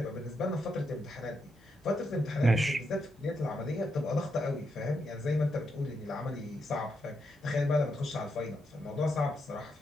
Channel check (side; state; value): both; normal; correlation 0.82